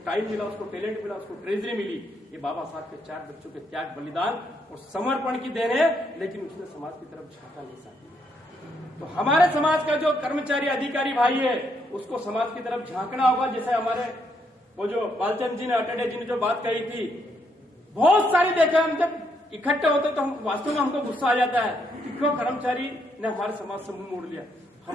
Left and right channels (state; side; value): normal; both; correlation 0.75